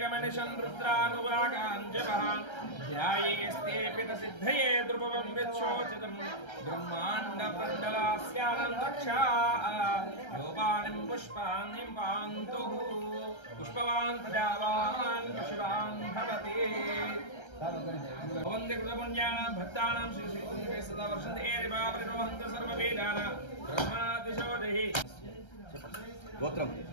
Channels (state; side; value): late; right; 1.3 ms